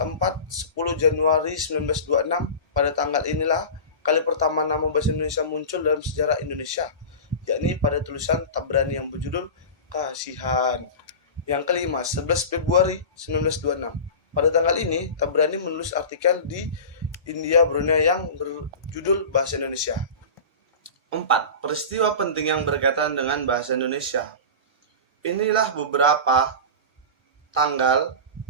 10 Januari 1926, pada tanggal inilah kali pertama nama bahasa Indonesia muncul dalam sejarah Indonesia. yakni pada tulisan Tabrani yang berjudul Kasihan. Yang kelima, 11 Februari 1926. Pada tanggal ini, Tabrani menulis artikel di India Brunei yang berjudul Bahasa Indonesia. 4. Peristiwa penting yang berkaitan dengan bahasa Indonesia. Inilah beberapa tanggal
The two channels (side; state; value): both; inverted; correlation -0.30